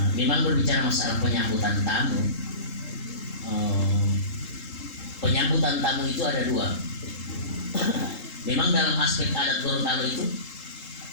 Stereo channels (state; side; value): late; right; 3.8 ms